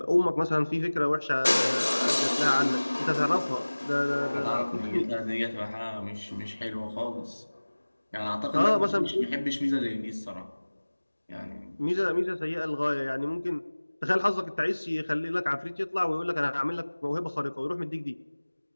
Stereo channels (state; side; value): inverted; both; correlation -1.00